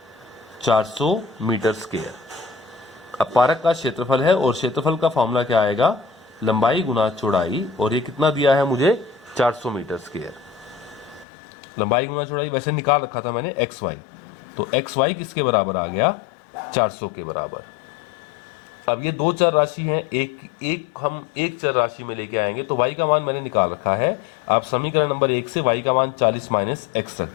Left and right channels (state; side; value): drops out; right; at 11.2 s